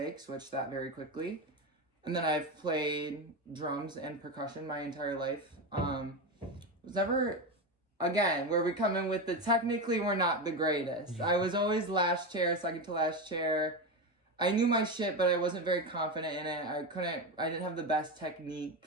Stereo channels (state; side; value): normal; both; correlation 0.16